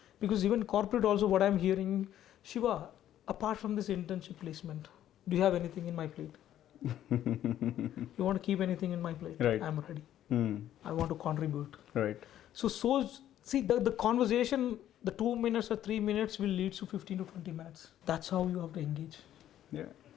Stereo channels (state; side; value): quieter; right; 11.7 dB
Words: Because even corporate also, what I'm hearing, Shiva, apart from this internship placement, do you have anything in my plate? You want to keep anything in my plate? Right. I'm ready. I want to contribute. Right. So see, the conversation, the 2 minutes or 3 minutes will lead to 15 to 20 minutes. That's how you have to engage. Yeah.